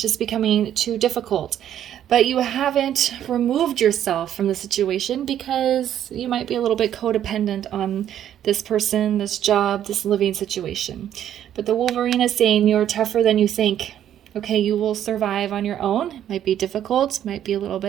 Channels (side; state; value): left; quieter; 10.7 dB